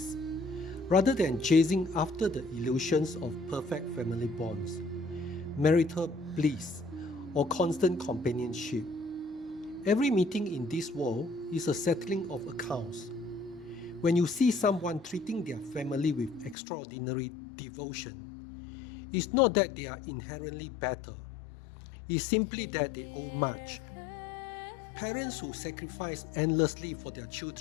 rather than chasing after the illusions of perfect family bonds, marital bliss, or constant companionship. Every meeting in this world is a settling of accounts. When you see someone treating their family with extraordinary devotion, it's not that they are inherently better, it's simply that they owe much. Parents who sacrifice endlessly for their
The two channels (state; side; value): drops out; right; at 16.6 s